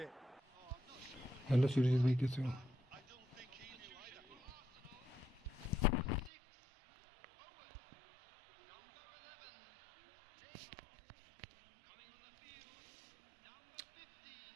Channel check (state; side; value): drops out; left; at 6.3 s